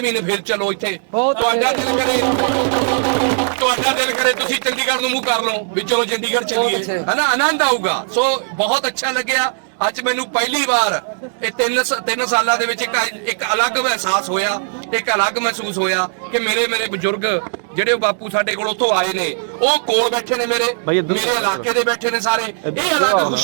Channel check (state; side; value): silent; left; digital silence